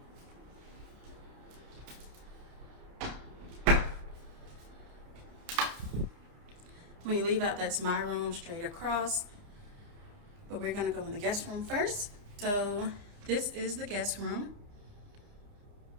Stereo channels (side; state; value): left; late; 29 ms